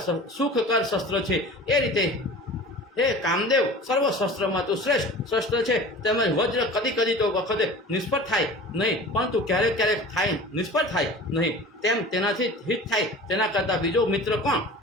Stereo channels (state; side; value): normal; both; correlation 0.39